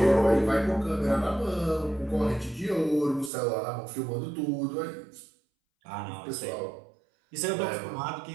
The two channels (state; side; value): drops out; left; at 3.3 s